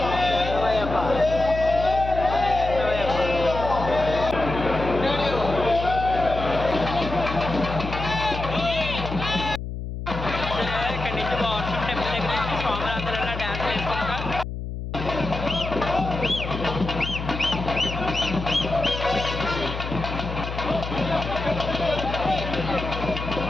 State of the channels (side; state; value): left; noise; hum, 6 dB below the sound